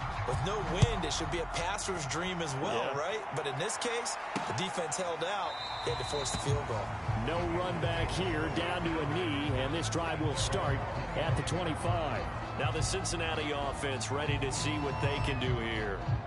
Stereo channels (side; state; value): both; identical; correlation 1.00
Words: with no wind, it should be a passer's dream as well, right? But in this case, the defense held out. They had to force the field goal. No run back here, down to a knee, and this drive will start at the 25. Now the Cincinnati offense ready to see what they can do here.